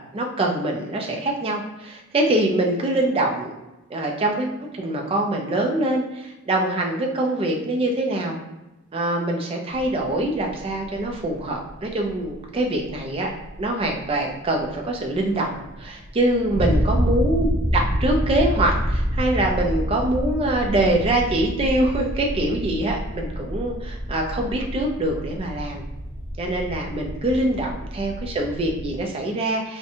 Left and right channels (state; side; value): normal; both; correlation 0.45